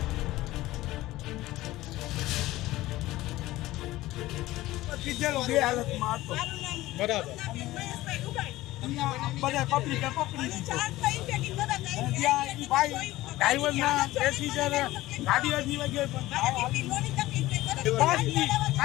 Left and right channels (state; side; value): quieter; right; 17.1 dB